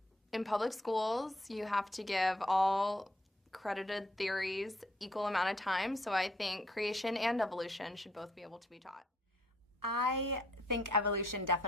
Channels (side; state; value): both; normal; correlation 0.67